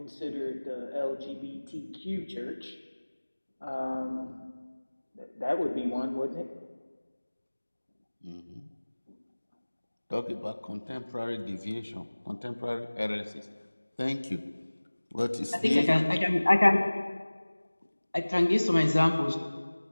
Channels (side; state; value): both; inverted; correlation -1.00